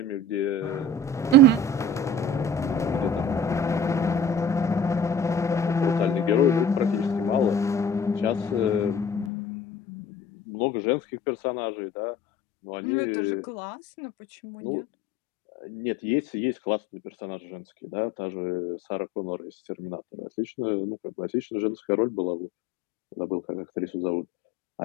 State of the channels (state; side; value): drops out; right; at 9.3 s